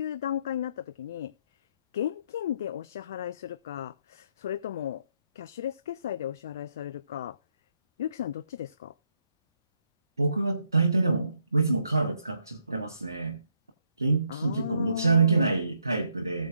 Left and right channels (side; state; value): both; inverted; correlation -0.74